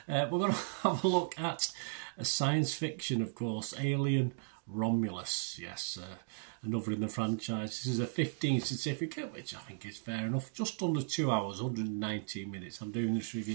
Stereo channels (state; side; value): silent; left; digital silence